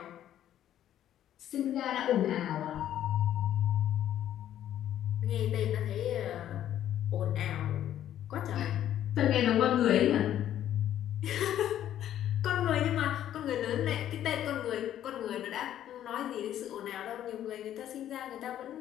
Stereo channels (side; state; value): right; quieter; 11.4 dB